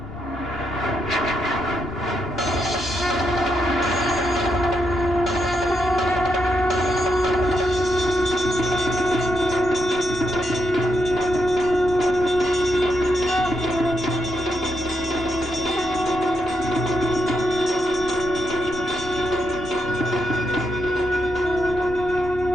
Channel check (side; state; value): left; noise; rumble, 15 dB below the sound